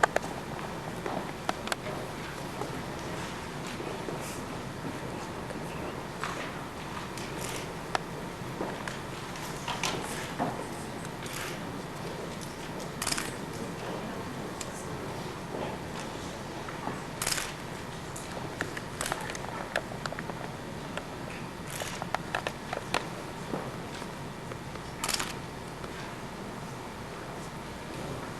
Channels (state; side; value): identical; both; correlation 1.00